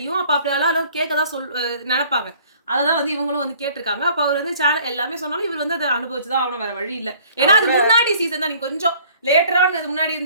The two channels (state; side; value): inverted; both; correlation -0.54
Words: அப்ப அப்படியெல்லாம் கேட்கதான் நினைப்பாங்க. அததான் வந்து இவங்களும் வந்து கேட்டிருக்காங்க. அப்ப அவர் வந்து சேனல் எல்லாமே சொன்னாலும் இவர் வந்து அதை அனுபவிச்சுதான் ஆகணும், வேற வழி இல்லை. ஏன்னா அது முன்னாடி சீசன் தான், நீங்க கொஞ்சம் லேட்டரான அது முன்னாடி